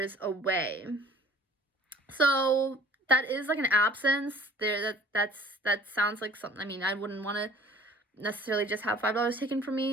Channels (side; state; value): both; normal; correlation 0.51